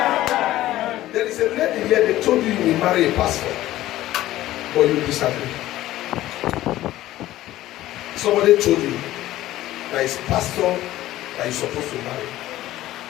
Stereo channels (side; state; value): right; quieter; 15.0 dB